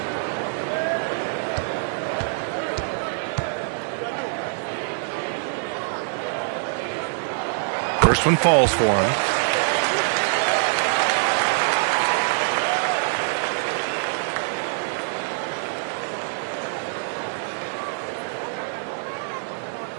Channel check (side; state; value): left; silent; 60 dB below the other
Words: First one falls for him.